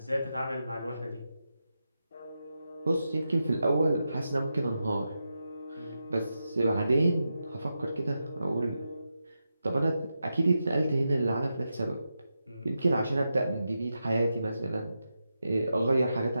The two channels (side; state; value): both; inverted; correlation -0.88